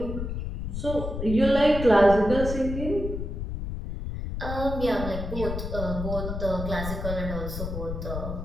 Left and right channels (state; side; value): noise; left; rumble, 5 dB below the sound